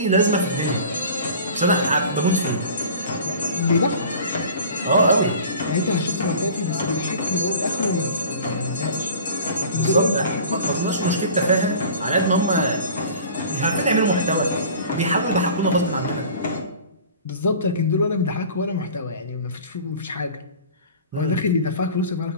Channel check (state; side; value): inverted; both; correlation -0.42